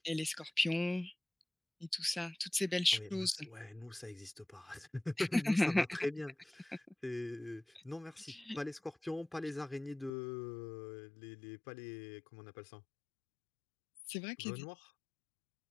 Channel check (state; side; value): drops out; right; at 10.1 s